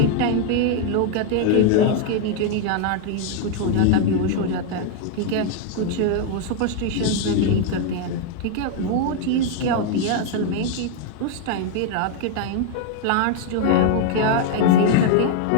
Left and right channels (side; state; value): both; different; correlation 0.00